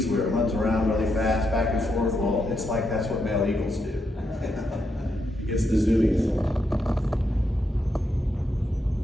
where it runs around really fast, back and forth, well, it's like that's what male eagles do. He gets the zoomies.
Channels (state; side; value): normal; both; correlation 0.81